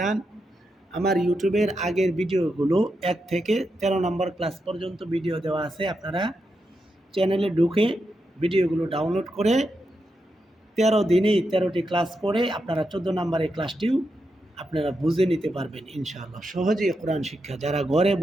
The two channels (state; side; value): normal; both; correlation 0.85